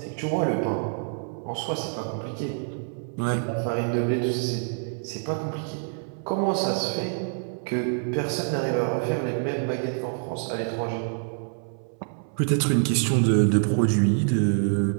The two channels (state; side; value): silent; left; 61 dB below the other